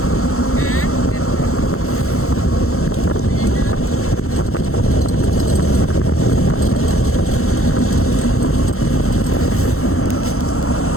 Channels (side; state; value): right; late; 0.63 ms